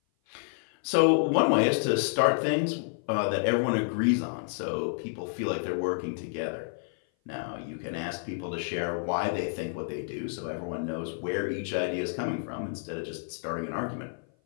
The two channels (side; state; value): right; silent; 56 dB below the other